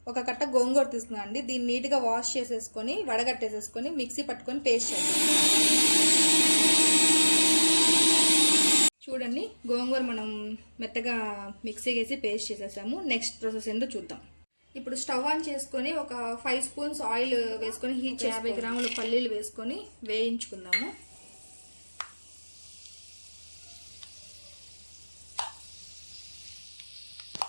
ఒక కట్ట గోంగూర తీసుకున్నాండి. దీన్ని నీట్గా వాష్ చేసేసుకొని వడగట్టేసేసుకొని మిక్సీ పట్టుకొని పేస్ట్ చేద్దాం. చూడండి, గోంగూర మనం మెత్తగా మిక్సీ వేసి పేస్ట్ చేసేసాము. నెక్స్ట్ ప్రాసెస్ ఏంటో చూద్దాం. ఇప్పుడు స్టవ్ ఆన్ చేసుకొని ఒక 5 స్పూన్స్ ఆయిల్ వేసుకొని హీట్ 50 గ్రాముల పల్లీలు వేసుకొని వేయించుకుందాము.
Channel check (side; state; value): both; inverted; correlation -1.00